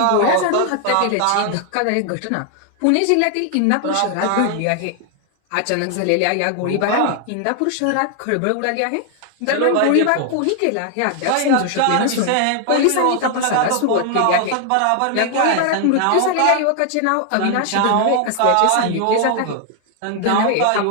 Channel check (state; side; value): different; both; correlation 0.00